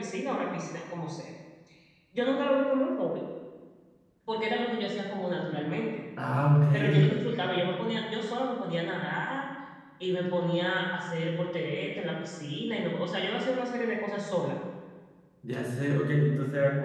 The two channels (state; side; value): identical; both; correlation 1.00